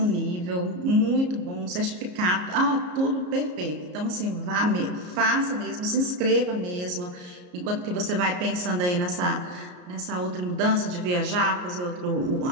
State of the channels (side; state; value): left; late; 33 ms